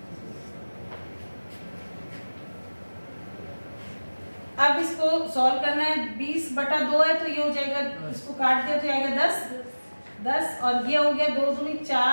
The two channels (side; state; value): both; inverted; correlation -1.00